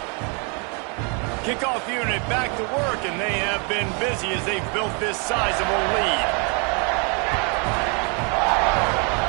Kickoff unit back to work, and they have been busy as they've built this sizable lead.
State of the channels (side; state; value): left; quieter; 35.2 dB